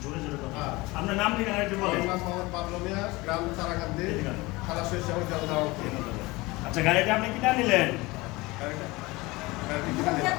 জোরে জোরে কথা। আপনার নাম ঠিকানা একটু বলেন। গ্রাম তারাকান্দি, থানা শৈশব জলদাওয়া। আচ্ছা, গাড়িটা আপনি কিনা নিলেন?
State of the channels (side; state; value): right; quieter; 22.2 dB